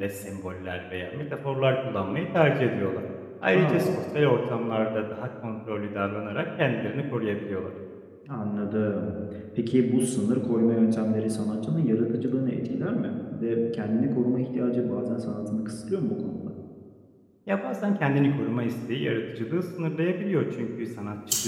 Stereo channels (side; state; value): both; identical; correlation 1.00